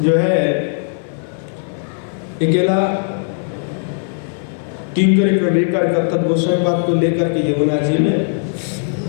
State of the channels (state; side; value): silent; right; digital silence